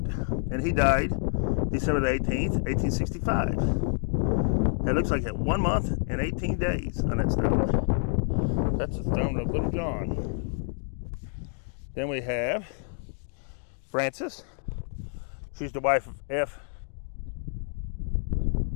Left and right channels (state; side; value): silent; right; 57 dB below the other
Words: and he died December the 18th, 1865. It looks like 1 month and 18 days on that stone. That's the stone of Little John. Then we have Frances. She's the wife of F.